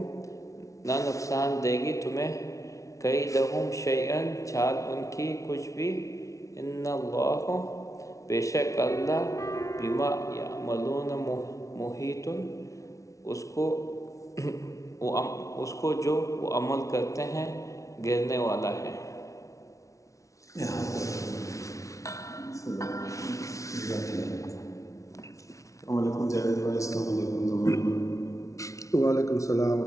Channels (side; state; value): right; late; 0.15 ms